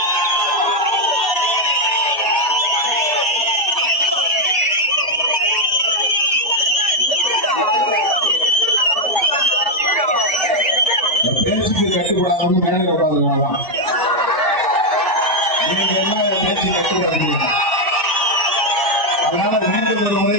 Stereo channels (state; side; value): normal; both; correlation 0.03